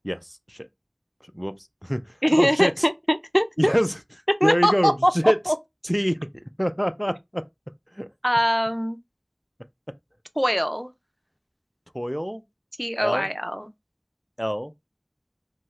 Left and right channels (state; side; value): identical; both; correlation 1.00